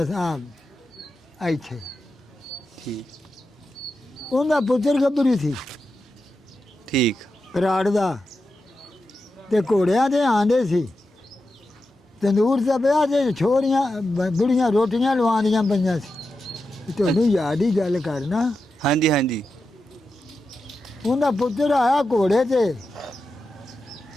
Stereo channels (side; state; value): both; normal; correlation 0.89